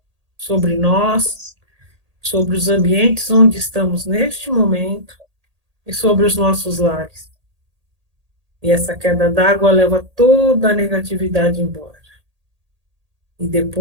sobre nós, sobre os ambientes onde estamos neste momento e sobre os nossos lares. E essa queda d'água leva toda a negatividade embora. E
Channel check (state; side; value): late; left; 1.8 ms